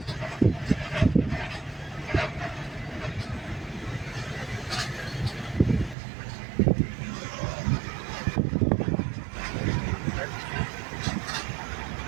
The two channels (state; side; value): drops out; left; at 6.0 s